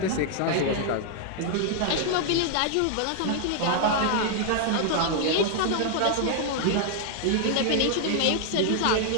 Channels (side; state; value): both; different; correlation 0.00